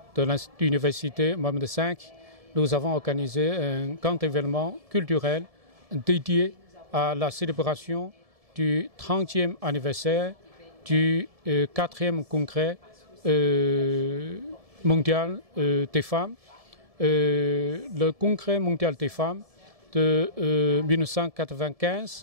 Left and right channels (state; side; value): late; left; 1.7 ms